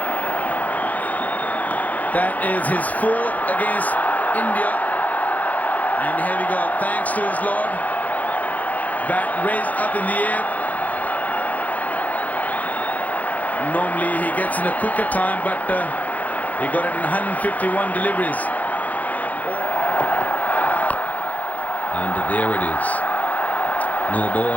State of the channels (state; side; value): late; right; 0.078 ms